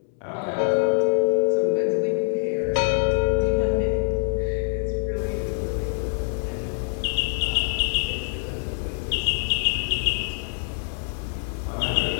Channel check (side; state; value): right; silent; 62 dB below the other